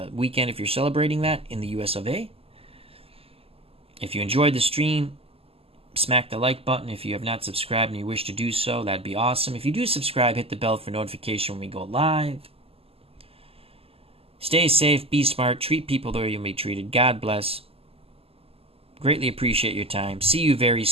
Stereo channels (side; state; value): left; late; 0.28 ms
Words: weekend if you're celebrating that in the US of A. If you enjoyed the stream, smack the like button. If you have not subscribed and you wish to do so, that'd be awesome. If you do subscribe, hit the bell for notification when we go live. Stay safe, be smart, treat people the way you'll be treated. God bless. Greatly appreciate your time. See you very